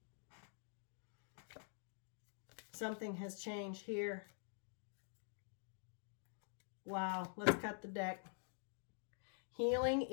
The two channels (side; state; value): right; silent; digital silence